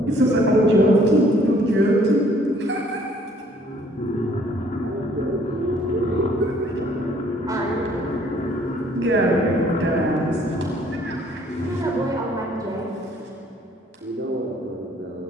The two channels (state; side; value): normal; both; correlation 0.60